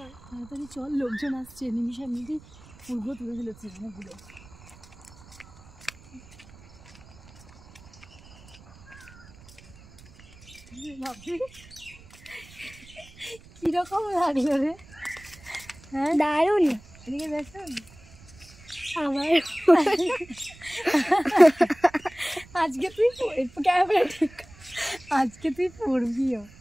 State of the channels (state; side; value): noise; right; rumble, 22 dB below the sound